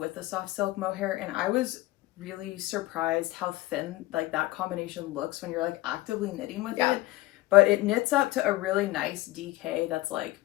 the soft silk mohair, and I was really surprised how thin like that combination looks when you're like actively knitting with it. But it knits up to a really nice DK that's like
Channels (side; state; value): right; quieter; 18.3 dB